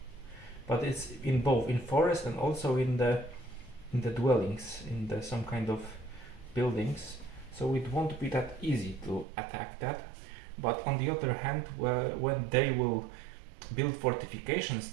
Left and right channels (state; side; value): drops out; left; at 9.2 s